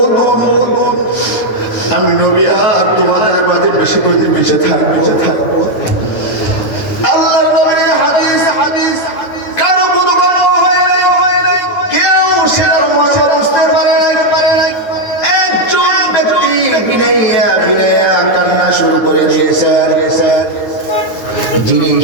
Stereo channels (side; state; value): right; late; 9.0 ms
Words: আমি নবী আর তোমাদের মাঝে বেশি বেঁচে থাকবো। আল্লাহর নবীর হাদিস কারো কোনো গল্প হয় নাই, কেউ সেটার মর্ম বুঝতে পারে নাই। একজন ব্যক্তি বিনাইয়া কান্না শুরু করে দিয়েছেন, যিনি